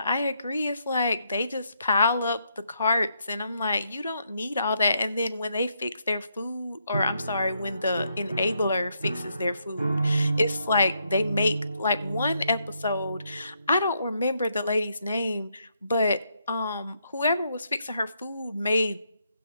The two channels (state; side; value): inverted; both; correlation -0.77